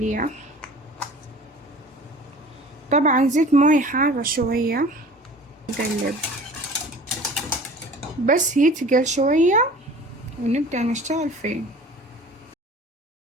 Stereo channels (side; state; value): both; normal; correlation 0.44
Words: طبعا زيت موية حارة شوية، نقلب بس يتقل شوية ونبدأ نشتغل فيه.